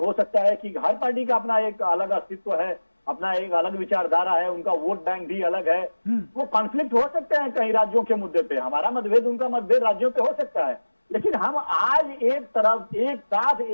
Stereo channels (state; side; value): inverted; both; correlation -1.00